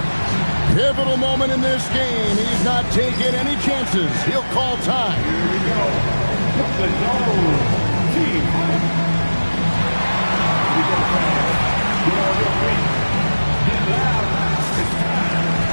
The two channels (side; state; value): both; inverted; correlation -1.00